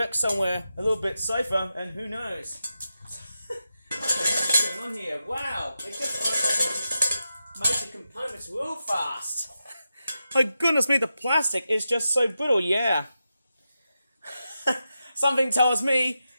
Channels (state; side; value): inverted; both; correlation -0.89